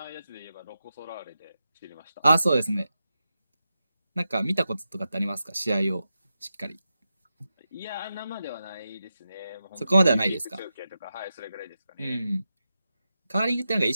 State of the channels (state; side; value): inverted; both; correlation -0.90